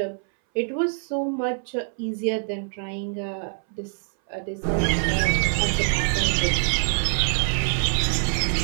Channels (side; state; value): left; silent; 62 dB below the other